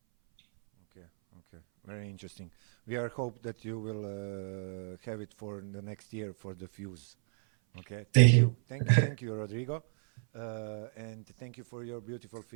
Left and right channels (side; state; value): left; silent; 56 dB below the other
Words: Okay, very interesting. We are hope that you will have it for the next year for the Fuse. Okay. Thank you, Rodrigo, and thank you for your beautiful